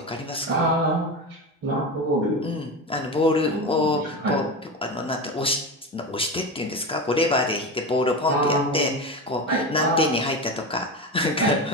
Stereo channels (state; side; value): normal; both; correlation 0.22